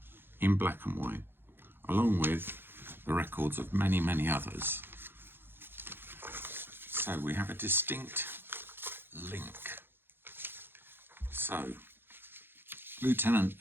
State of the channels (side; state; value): left; late; 0.10 ms